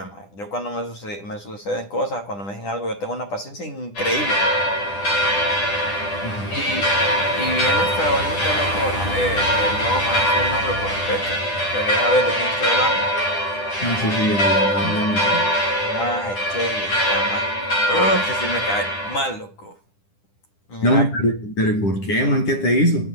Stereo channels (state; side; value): late; right; 10 ms